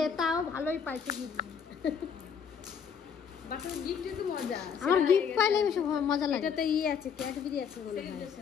তাও ভালোই পাইছে গিফট। বাচ্চার গিফটে তো মজা, আমার গিফট পাইলে বেশি মজা লাগে। এটাতে আছে ক্যাডবেরি আছে বলে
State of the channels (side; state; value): right; quieter; 7.0 dB